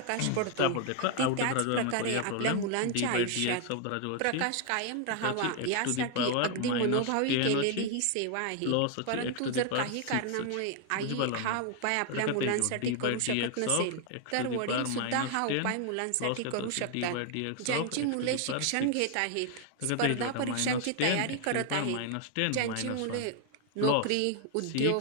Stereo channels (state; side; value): different; both; correlation 0.00